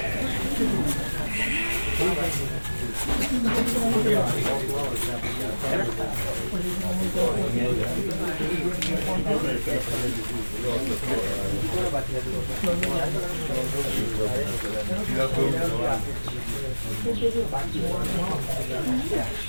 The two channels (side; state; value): both; inverted; correlation -1.00